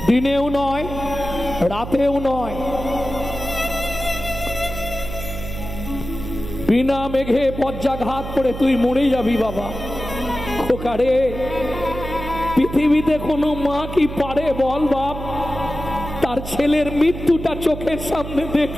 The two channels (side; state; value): right; noise; hum, 9 dB below the sound